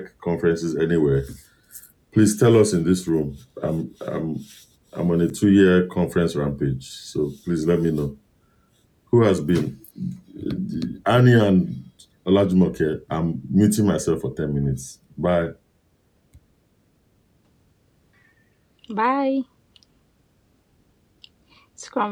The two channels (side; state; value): both; identical; correlation 1.00